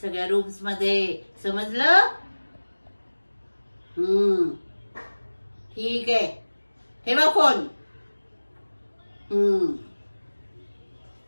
सगळ्या रूम्स मध्ये, समजलं? ठीक आहे, ठेवा फोन.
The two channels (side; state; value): both; inverted; correlation -1.00